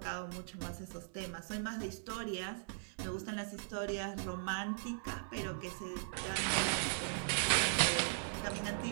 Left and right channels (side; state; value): left; silent; 52 dB below the other